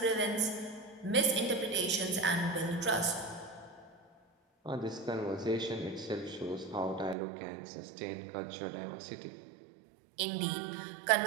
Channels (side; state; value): left; drops out; at 7.2 s